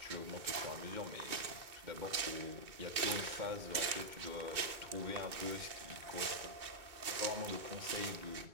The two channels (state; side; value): late; left; 2.6 ms